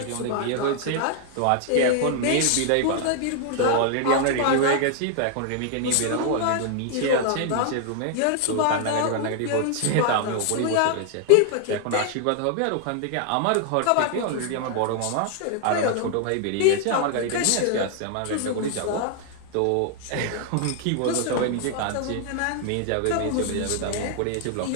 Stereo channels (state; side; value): different; both; correlation 0.00